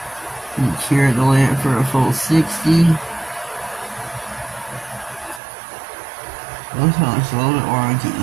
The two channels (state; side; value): drops out; left; at 5.4 s